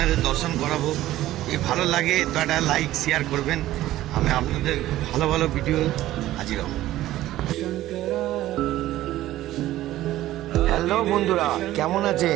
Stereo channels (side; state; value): left; quieter; 14.8 dB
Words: দর্শন করাবো। এই ভালো লাগে তো একটা লাইক শেয়ার করবেন। আমি আপনাদের ভালো ভালো ভিডিও হাজির হব। হ্যালো বন্ধুরা, কেমন